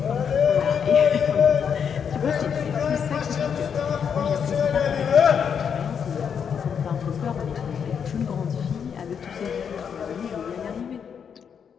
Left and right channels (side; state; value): right; quieter; 7.3 dB